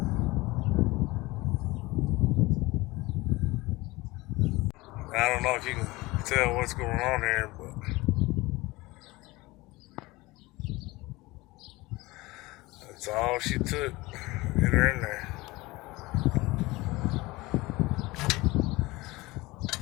I don't know if you can tell what's going on here, but that's all she took. Get her in there.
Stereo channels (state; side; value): quieter; right; 21.3 dB